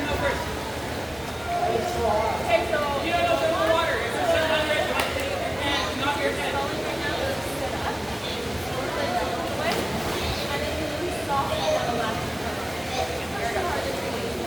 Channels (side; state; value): left; noise; hum, 27 dB below the sound